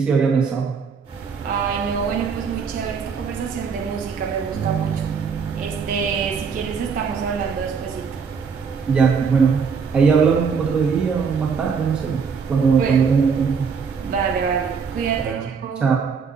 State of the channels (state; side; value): quieter; left; 5.9 dB